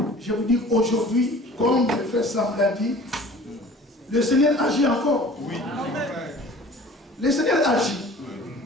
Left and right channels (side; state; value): both; normal; correlation 0.46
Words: je vous dis aujourd'hui, comme le frère Sam l'a dit, le Seigneur agit encore. Oui. Le Seigneur agit.